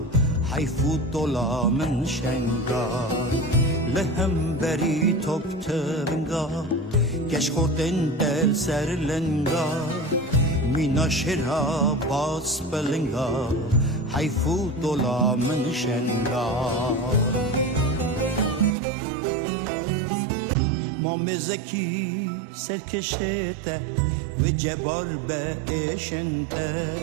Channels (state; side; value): drops out; left; at 18.8 s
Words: حیفو دولا من شنگار لهم بری توب تونگا کش خوردن دل سرلنگا مینا شرا باس بلنگا حیفو دولا من شنگار مامزکی سرکشته و جبار به اشنته